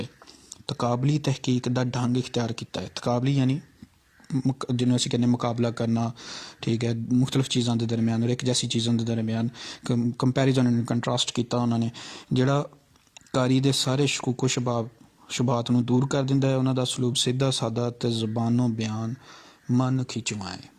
ਤਕਾਬਲੀ ਤਹਿਕੀਕ ਦਾ ਢੰਗ ਇਖਤਿਆਰ ਕੀਤਾ ਹੈ। ਤਕਾਬਲੀ ਯਾਨੀ ਜਿਹਨੂੰ ਅਸੀਂ ਕਹਿੰਦੇ ਮੁਕਾਬਲਾ ਕਰਨਾ, ਠੀਕ ਹੈ, ਮੁਖਤਲਿਫ ਚੀਜ਼ਾਂ ਦੇ ਦਰਮਿਆਨ ਔਰ ਇੱਕ ਜੈਸੀ ਚੀਜ਼ਾਂ ਦੇ ਦਰਮਿਆਨ ਕੰਪੈਰੀਜ਼ਨ ਐਂਡ ਕੰਟਰਾਸਟ ਕੀਤਾ ਉਹਨਾਂ ਨੇ। ਜਿਹੜਾ ਕਾਰੀ ਦੇ ਸਾਰੇ ਸ਼ਕੂਕੋ ਸ਼ੁਬਾਤ ਨੂੰ ਦੂਰ ਕਰ ਦਿੰਦਾ ਹੈ। ਉਹਨਾਂ ਦਾ ਸਲੂਕ ਸਿੱਧਾ ਸਾਦਾ ਅਤੇ ਜ਼ਬਾਨੋਂ ਬਿਆਨ ਮਨ ਖਿੱਚਵਾਂ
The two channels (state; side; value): identical; both; correlation 1.00